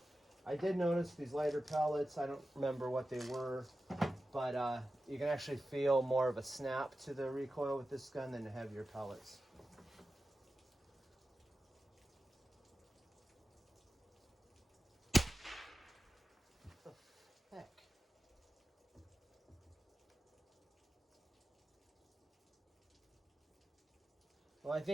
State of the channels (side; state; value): both; normal; correlation 0.93